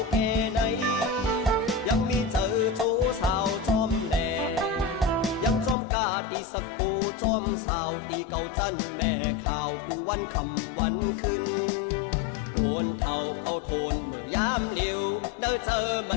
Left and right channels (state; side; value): drops out; right; at 5.8 s